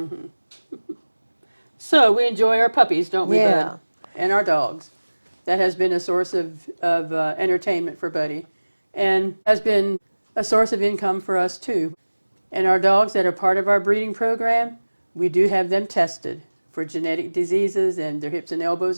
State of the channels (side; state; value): both; inverted; correlation -1.00